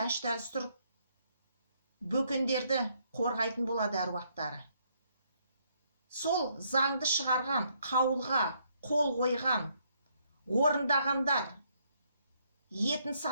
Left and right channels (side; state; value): both; inverted; correlation -0.71